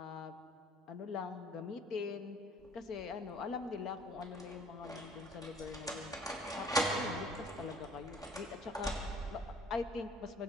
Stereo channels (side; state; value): both; normal; correlation 0.54